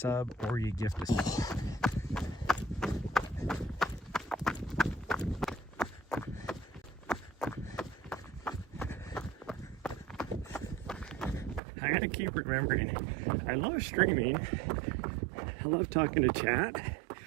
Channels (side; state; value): left; drops out; at 11.6 s